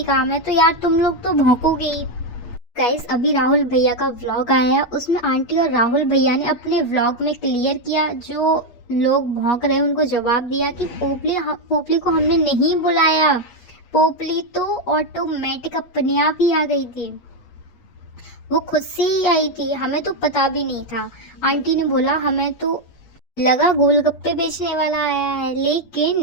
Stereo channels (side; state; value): right; late; 8.4 ms